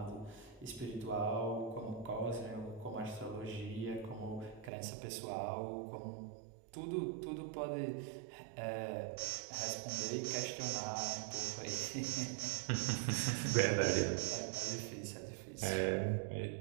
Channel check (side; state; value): left; drops out; at 4.7 s